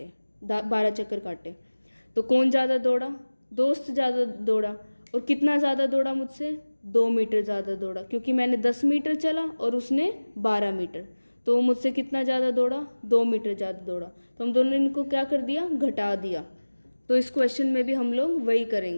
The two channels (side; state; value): both; inverted; correlation -1.00